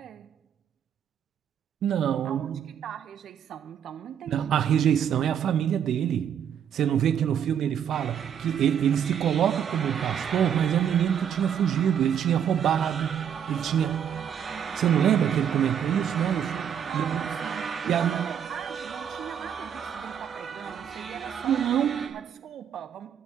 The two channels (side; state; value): left; quieter; 8.7 dB